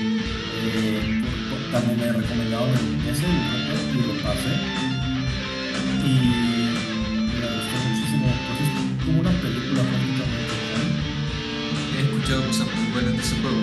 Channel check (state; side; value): identical; both; correlation 1.00